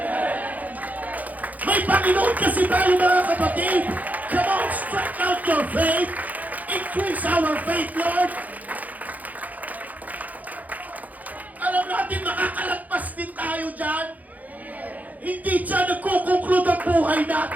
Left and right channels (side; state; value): left; late; 0.079 ms